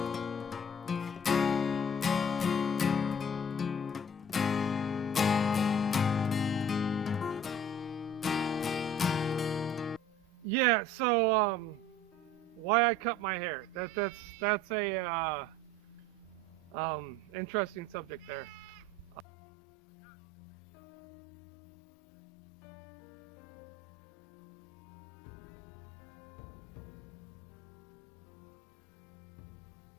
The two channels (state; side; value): drops out; right; at 19.2 s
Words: Yeah, so why I cut my hair? That's a interesting subject there. Um, I got really sick over the winter. Like a good couple months, I was bedridden, and it was pretty bad.